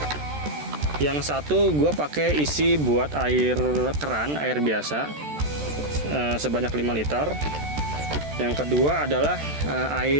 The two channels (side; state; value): left; late; 14 ms